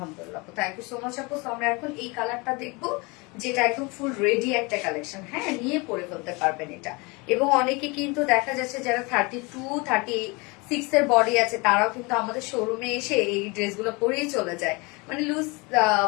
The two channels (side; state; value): right; quieter; 27.3 dB